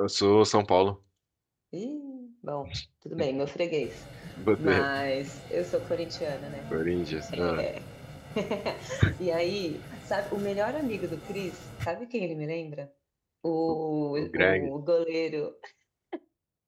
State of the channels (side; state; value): both; identical; correlation 1.00